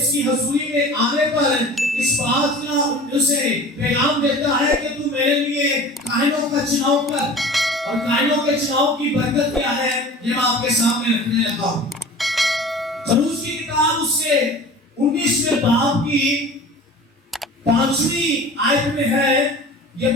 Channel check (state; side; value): normal; both; correlation 0.40